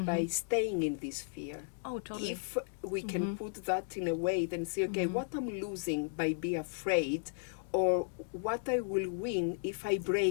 staying in this fear. Oh, totally. If we can put that in a way, then say, okay, what I'm losing by being afraid, or what I will win if I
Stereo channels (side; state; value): right; silent; digital silence